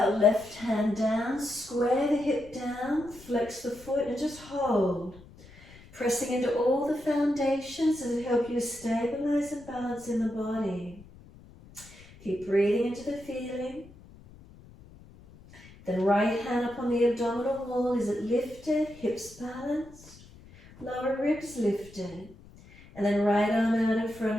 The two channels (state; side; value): noise; left; rumble, 21 dB below the sound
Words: left hand down, square the hip down, flex the foot and just hold. Pressing into all the foundations as it helps you to stabilize and balance in the body. Keep breathing into the feeling. Then right hand up on the abdominal wall. Is it lifted? Hips balanced. Lower ribs lifted. And then right arm out in